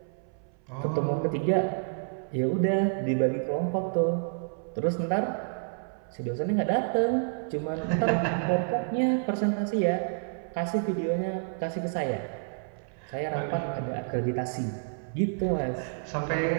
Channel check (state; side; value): silent; left; 59 dB below the other